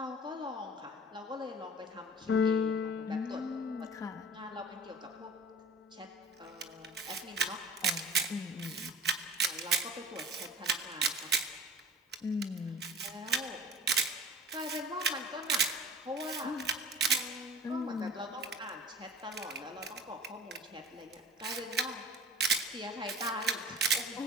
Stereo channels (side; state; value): both; normal; correlation 0.40